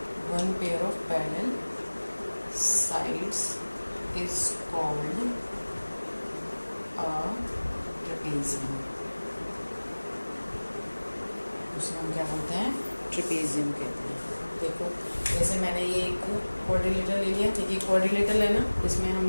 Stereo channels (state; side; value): inverted; both; correlation -1.00